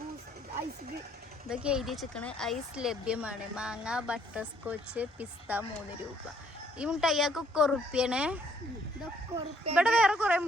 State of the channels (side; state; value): both; normal; correlation 0.65